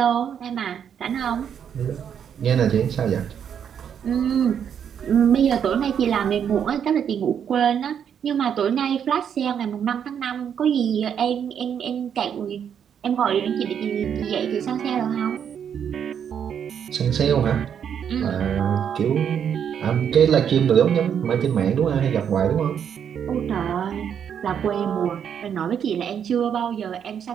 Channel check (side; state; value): left; quieter; 8.3 dB